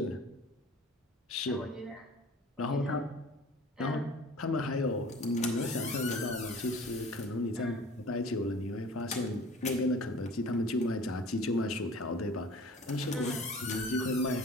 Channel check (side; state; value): both; normal; correlation 0.45